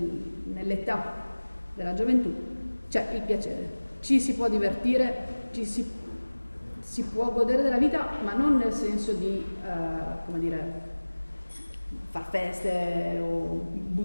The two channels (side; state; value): both; inverted; correlation -1.00